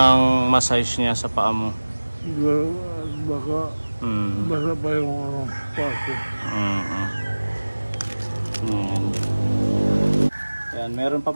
massage niya sa paa mo. Siguro, baka basa pa yung ano, paso. Ayan, meron pa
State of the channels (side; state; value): both; inverted; correlation -1.00